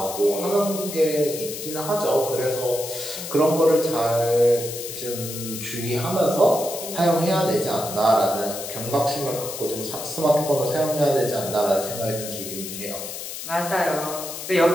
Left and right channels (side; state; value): left; noise; hiss, 8 dB below the sound